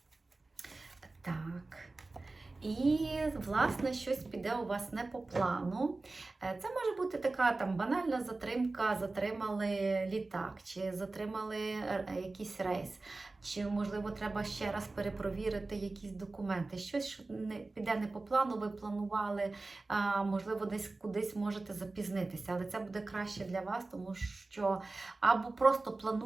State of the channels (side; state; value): left; quieter; 3.3 dB